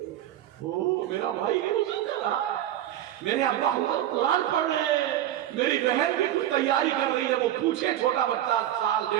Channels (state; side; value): quieter; left; 12.3 dB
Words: او میرا بھائی روزہ کر رہا ہے. میرے ابا قرآن پڑھ رہے ہیں. میری بہن بھی کچھ تیاری کر رہی ہے. وہ پوچھے چھوٹا بچہ